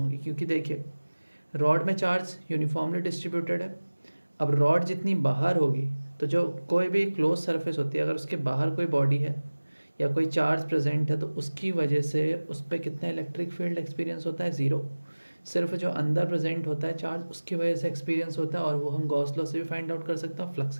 क्योंकि देखिए रॉड में चार्ज यूनिफॉर्मली डिस्ट्रीब्यूटेड है। अब रॉड जितनी बाहर होगी तो जो कोई भी क्लोज सरफेस होती है अगर उसके बाहर कोई बॉडी है या कोई चार्ज प्रेजेंट है तो उसकी वजह से उस पर कितना इलेक्ट्रिक फील्ड एक्सपीरियंस होता है, ज़ीरो। सिर्फ जो अंदर प्रेजेंट होता है चार्ज उसकी वजह से एक्सपीरियंस होता है और वो हम गॉस लॉ से भी फाइंड आउट कर सकते हैं, फ्लक्स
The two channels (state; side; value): inverted; both; correlation -1.00